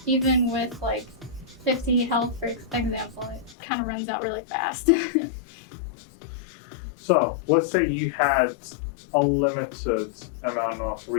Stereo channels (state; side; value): drops out; right; at 3.6 s